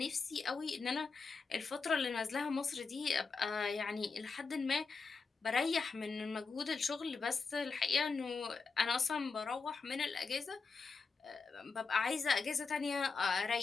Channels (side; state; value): right; quieter; 4.7 dB